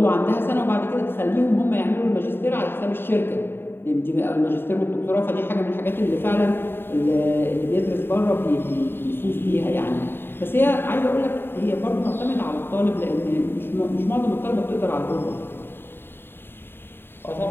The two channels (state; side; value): late; right; 0.11 ms